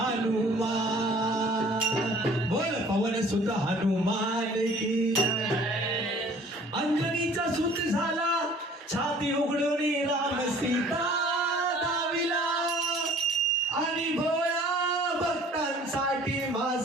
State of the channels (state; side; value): normal; both; correlation 0.51